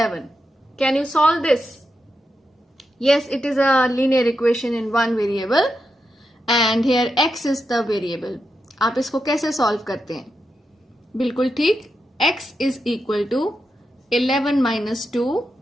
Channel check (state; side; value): normal; both; correlation 0.86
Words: Can you solve this? Yes, it is a linear equation in one variable. And here x is the variable. आप इसको कैसे solve करते हैं? बिल्कुल ठीक, x is equal to 11 minus 2